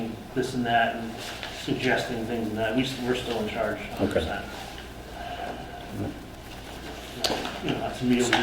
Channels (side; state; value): both; identical; correlation 1.00